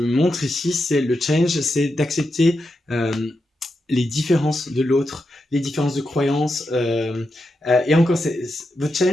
montre ici, c'est le change, c'est d'accepter les différences de l'autre, les différences de croyances. Et encore, votre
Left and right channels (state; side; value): normal; both; correlation 0.87